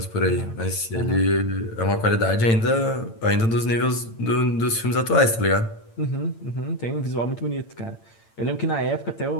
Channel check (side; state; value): right; late; 8.8 ms